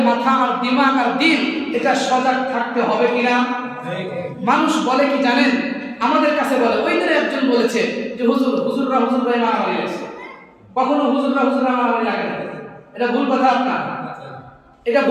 মাথা আর দিমাগ আর দিল এটা সজাগ থাকতে হবে কিনা। মানুষ বলে কি জানেন? আমাদের কাছে বলে, ওই দিনে একজন বলেছে যে হুজুররা মারামারি লাগছে। কখনো হুজুররা মারামারি লাগে না। এটা ভুল কথা আপনার, এটা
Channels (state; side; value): identical; both; correlation 1.00